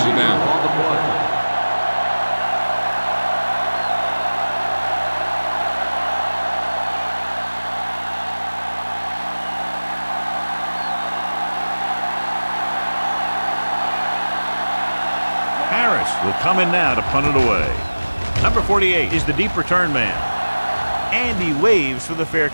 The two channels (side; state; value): both; inverted; correlation -1.00